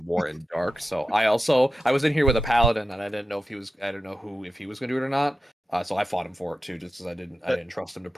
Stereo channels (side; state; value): both; normal; correlation 0.90